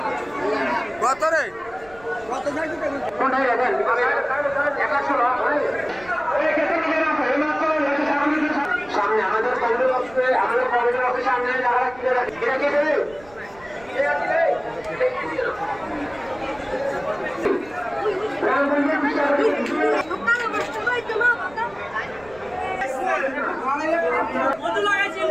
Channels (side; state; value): right; noise; rumble, 23 dB below the sound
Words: কত রে? সামনে আমাদের কমিটির অফিসে সামনে যারা